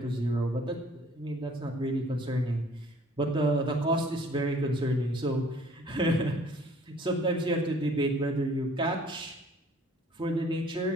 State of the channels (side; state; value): both; normal; correlation 0.55